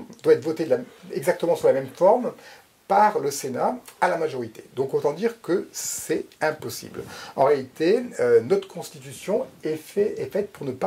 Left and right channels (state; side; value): identical; both; correlation 1.00